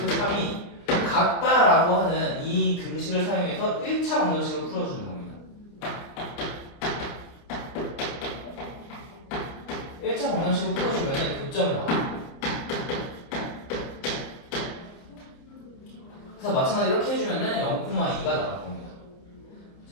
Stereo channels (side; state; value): right; late; 29 ms